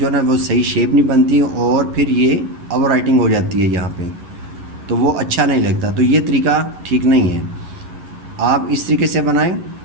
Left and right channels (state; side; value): late; left; 11 ms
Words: ना वो सही शेप नहीं बनती और फिर ये ओवर राइटिंग हो जाती है यहाँ पे, तो वो अच्छा नहीं लगता। तो ये तरीका ठीक नहीं है। आप इस तरीके से बनाएं,